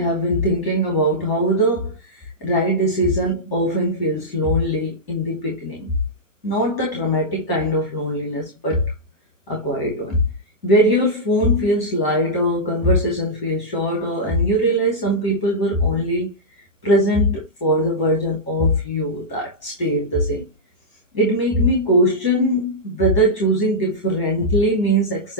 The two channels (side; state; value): left; late; 1.1 ms